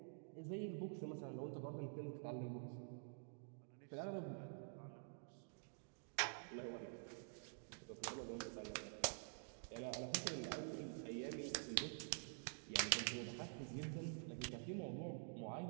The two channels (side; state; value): left; silent; digital silence